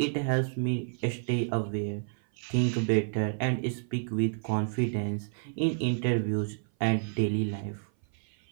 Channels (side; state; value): left; silent; 56 dB below the other